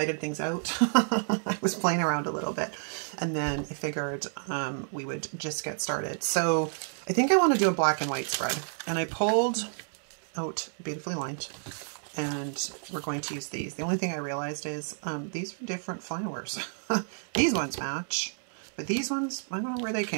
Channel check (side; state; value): left; silent; digital silence